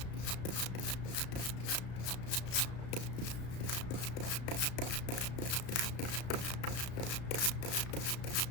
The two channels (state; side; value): late; right; 34 ms